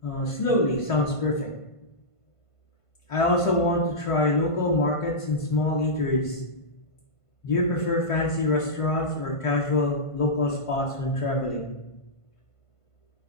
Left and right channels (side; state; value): right; late; 1.5 ms